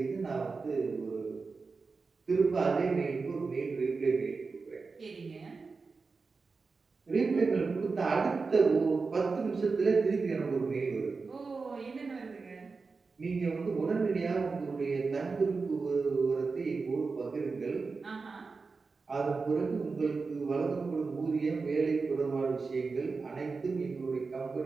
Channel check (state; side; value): quieter; left; 4.4 dB